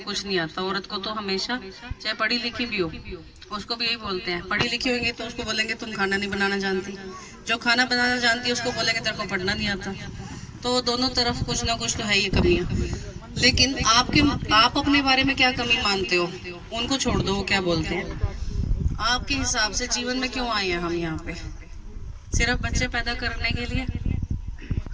कुछ नहीं आता। औरत को तो हमेशा, चाहे पढ़ी लिखी भी हो, उसको भी यही बोलते हैं। पढ़ी लिखी होंगी तो उसको बोलेंगे तुम खाना नहीं बनाना जानती, जो खाना बनाना जानती है उसको बोलेंगे तेरे को पढ़ना नहीं आता। तो दोनों तरफ कुछ ना कुछ तो है ही कमियां। लेकिन आप अपने बारे में क्या कमी मानते हो, उनको छोड़ दो, वो क्या बोलते हैं। आपके हिसाब से जीवन में क्यों आए हैं हम यहाँ पे? सिर्फ बच्चे पैदा करने के लिए,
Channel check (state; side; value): identical; both; correlation 1.00